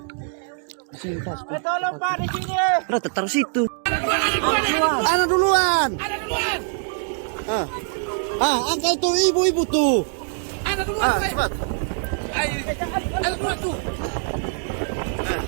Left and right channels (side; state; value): left; silent; digital silence